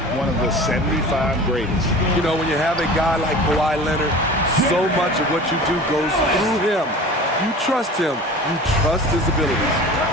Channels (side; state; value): both; normal; correlation 0.38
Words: one of the 75 greatest. You know, when you have a guy like Kawhi Leonard, so much of what you do goes through him. You trust him. You trust his abilities.